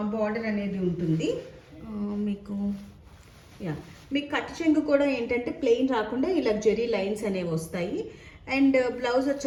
బార్డర్ అనేది ఉంటుంది. మీకు కట్ చెంగు కూడా ఏంటంటే ప్లెయిన్ రాకుండా ఇలా జెరీ లైన్స్ అనేవి వస్తాయి. అండ్ బ్లౌజ్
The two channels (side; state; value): both; identical; correlation 1.00